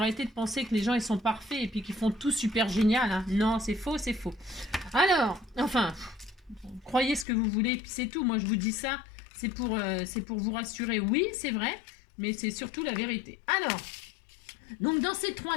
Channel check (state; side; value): drops out; right; at 7.2 s